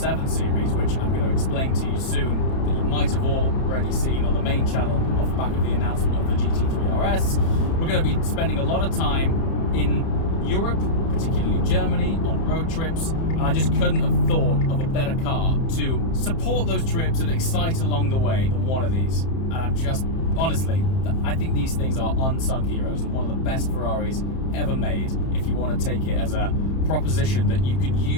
series, which I'm going to explain to you soon, that you might have already seen on the main channel off the back of the announcement of the GT3 RS, we're going to be spending a lot of time in Europe, particularly Germany, on road trips, and I just couldn't have thought of a better car to support those trips and excite along the way than one of these. And I'm just, honestly, I think these things are unsung heroes and one of the best Ferraris ever made, if you want to take it as a proposition that you can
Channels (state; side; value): late; right; 30 ms